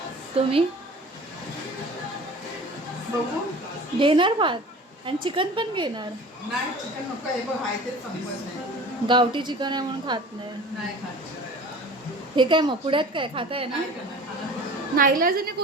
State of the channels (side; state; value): both; normal; correlation 0.41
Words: तुम्ही बघू. घेणार भात आणि चिकन पण घेणार. नाही चिकन नको, हे बघ आहे तेच संपत नाही. गावठी चिकन आहे म्हणून खात नाही. नाही खात. हे काय मग पुण्यात काय खाताय ना? नाईलाजाने